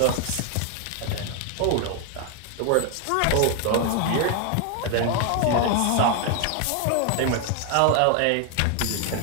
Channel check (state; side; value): different; both; correlation 0.00